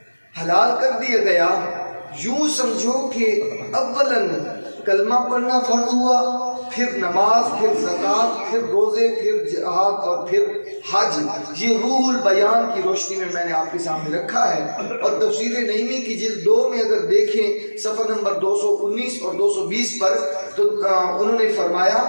حلال کر دیا گیا۔ یوں سمجھو کہ اولاً کلمہ پڑھنا فرض ہوا، پھر نماز، پھر زکوٰۃ، پھر روزے، پھر جہاد، اور پھر حج۔ یہ روح البیان کی روشنی میں میں نے آپ کے سامنے رکھا ہے، اور تفسیر نعیمی کی جلد 2 میں اگر دیکھیں صفحہ نمبر 219 اور 220 پر، تو انہوں نے فرمایا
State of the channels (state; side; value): inverted; both; correlation -1.00